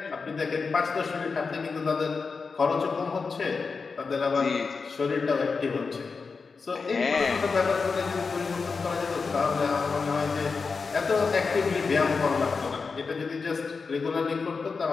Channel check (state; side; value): quieter; right; 4.8 dB